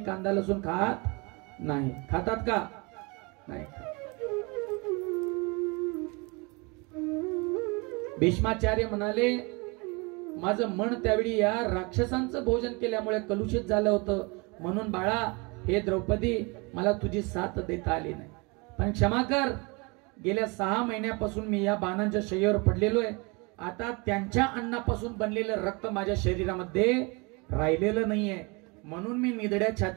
कांदा लसूण खात नाही. खातात का? नाही. भीष्माचार्य म्हणाले, माझं मन त्यावेळी या राक्षसांचं भोजन केल्यामुळे कलुषित झालं होतं, म्हणून बाळा हे द्रौपदी मला तुझी साथ देता आली नाही, पण क्षमा कर. गेल्या 6 महिन्यापासून मी या बाणांच्या शय्येवर पडलेलो आहे. आता त्यांच्या अन्नापासून बनलेलं रक्त माझ्या शरीरामध्ये राहिलेलं नाहीये, म्हणून मी निधड्या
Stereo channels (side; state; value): left; quieter; 28.8 dB